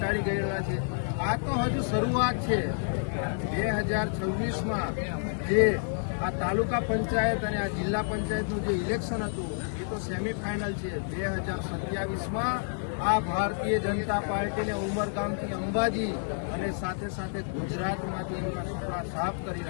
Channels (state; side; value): silent; right; 58 dB below the other